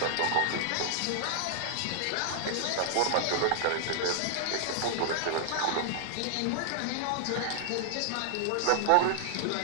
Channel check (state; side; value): different; both; correlation -0.01